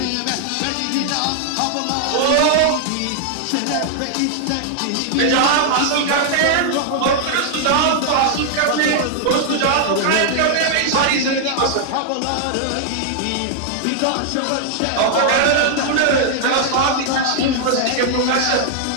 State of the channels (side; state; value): both; different; correlation 0.00